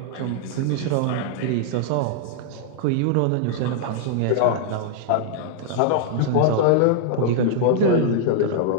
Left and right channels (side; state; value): both; different; correlation -0.01